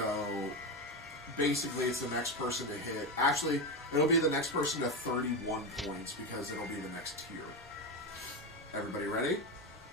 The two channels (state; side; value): normal; both; correlation 0.15